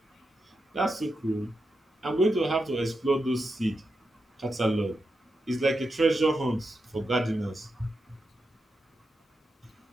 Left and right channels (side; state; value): both; normal; correlation 0.87